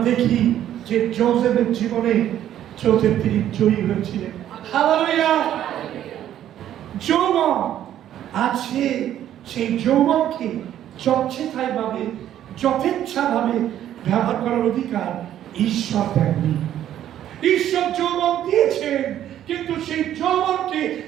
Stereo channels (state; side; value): quieter; left; 11.4 dB